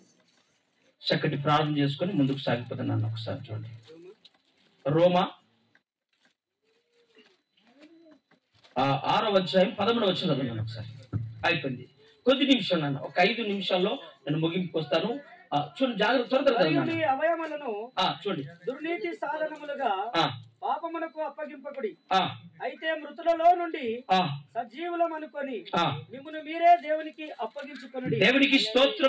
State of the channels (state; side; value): identical; both; correlation 1.00